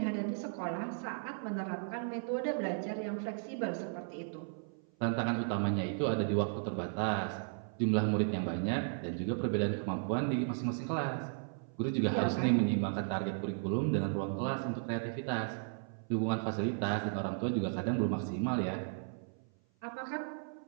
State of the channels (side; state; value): left; silent; 54 dB below the other